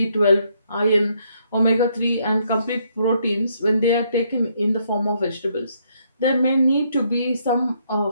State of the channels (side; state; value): both; inverted; correlation -0.72